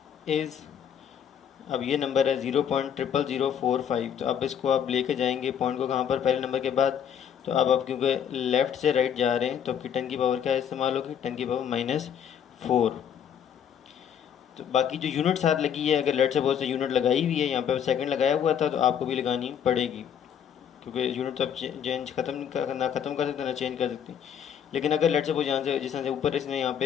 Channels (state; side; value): quieter; right; 8.6 dB